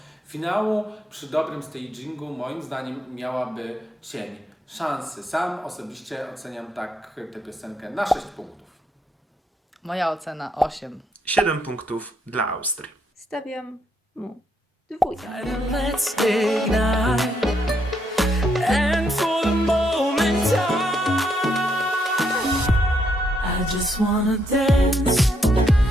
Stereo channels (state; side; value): normal; both; correlation 0.76